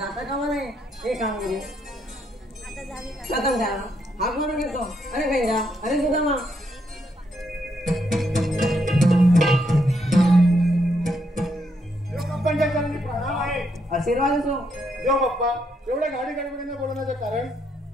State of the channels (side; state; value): both; normal; correlation 0.76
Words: कामा नाही. ही कामगिरी प्रथम त्याला हाक मारून घेतो. अरे पैजा, अरे सुदामा. आशीर्वाद असो. देव बाप्पा, एवढ्या गाडी गडबडीने बोलवण्याचं कारण?